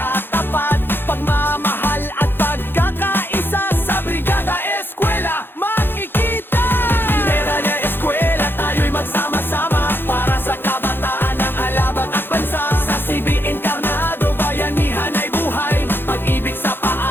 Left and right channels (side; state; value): right; late; 0.10 ms